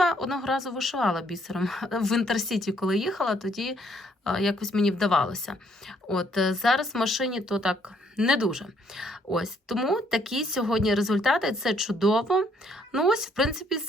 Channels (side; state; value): both; normal; correlation 0.67